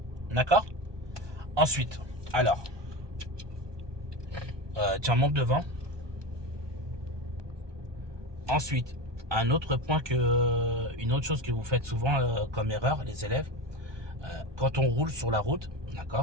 D'accord? Ensuite, alors, tiens, monte devant. Ensuite, une autre chose que vous faites souvent comme erreur, les élèves, quand on roule sur la route,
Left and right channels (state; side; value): late; left; 1.2 ms